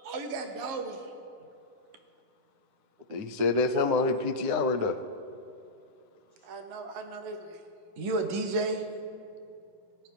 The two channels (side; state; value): left; late; 11 ms